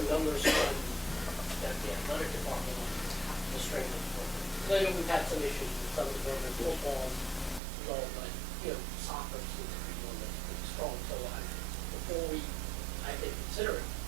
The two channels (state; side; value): drops out; left; at 7.6 s